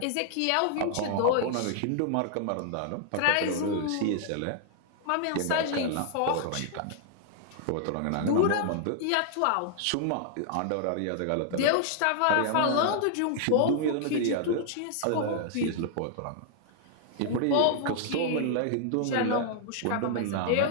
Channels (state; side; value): different; both; correlation -0.01